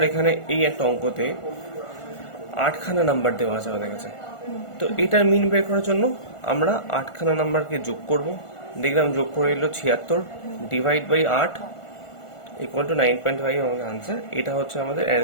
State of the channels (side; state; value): right; late; 1.5 ms